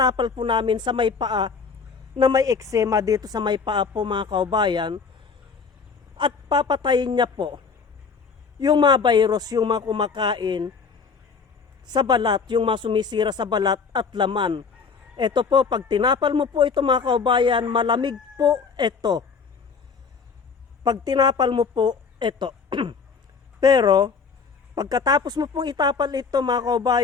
po namin sa may paa, na may eczema dito sa may paa po mga kaubayan. At papatayin niya po yung mga virus, yung mga kumakain sa balat, yung mga sumisira sa balat at laman. Ito po, pag tinapal mo po ito mga kaubayan, malamig po ito. Pag tinapal mo po ito. Pero, pagkatapos mo pong itapal ito mga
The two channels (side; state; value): right; quieter; 5.4 dB